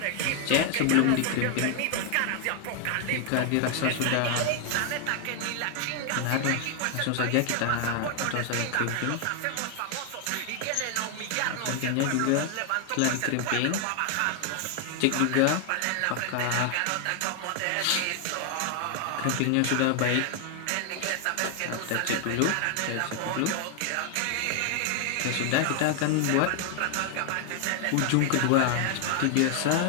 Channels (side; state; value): both; different; correlation 0.00